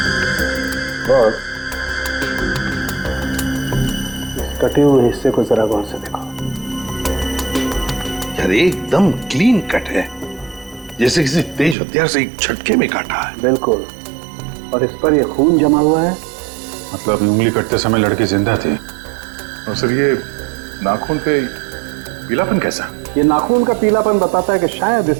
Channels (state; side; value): drops out; left; at 11.8 s